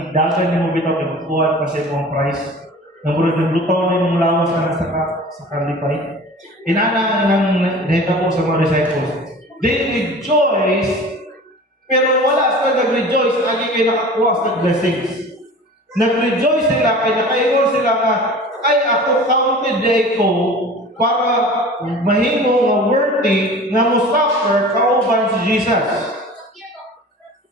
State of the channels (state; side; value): normal; both; correlation 0.41